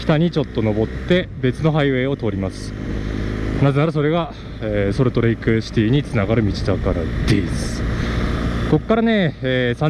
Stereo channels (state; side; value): identical; both; correlation 1.00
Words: 北にちょっと登って別のハイウェイを通ります。なぜならそれが、ソルトレイクシティにつながる道だからです。ここからね、